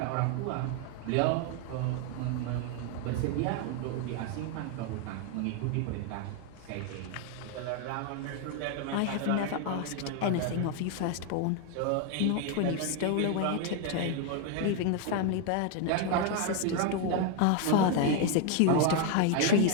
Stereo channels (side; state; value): both; different; correlation 0.01